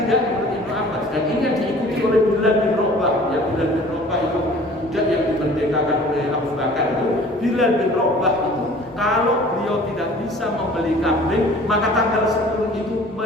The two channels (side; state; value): both; normal; correlation 0.48